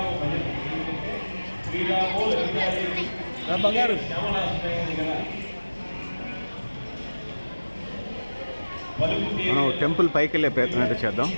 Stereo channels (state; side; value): inverted; both; correlation -1.00